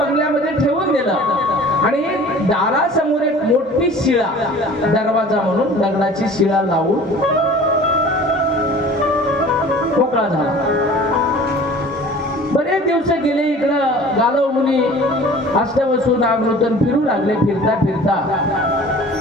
ठेवून दिलं. आणि दारासमोर एक मोठी शिळा, दरवाजा म्हणून दगडाची शिळा लावून मोकळा झाला. बरेच दिवस गेले. इकडं गालव मुनी अष्टवसू नागनूतन फिरू लागले. फिरता फिरता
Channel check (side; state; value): both; normal; correlation 0.45